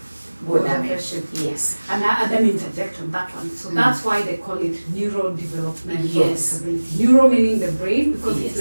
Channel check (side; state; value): both; inverted; correlation -1.00